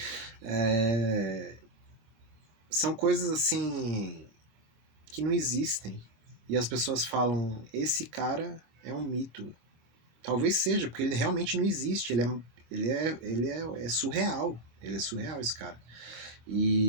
são coisas assim que não existem. E as pessoas falam, esse cara é um mito. Talvez seja, porque ele realmente não existe. É surreal. Ele é surreal, esse cara.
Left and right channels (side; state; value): left; late; 26 ms